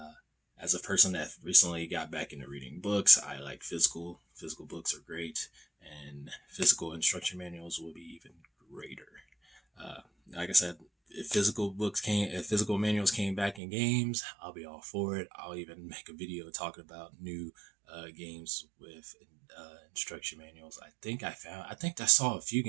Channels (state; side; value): drops out; left; at 13.6 s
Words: as a person that recently got back into reading books, I like physical. Physical books are great, and physical instruction manuals will be even greater. Uh, like I said, if physical manuals came back in games, I'll be all for it. I'll even make a video talking about new games with instruction manuals. I think I saw a few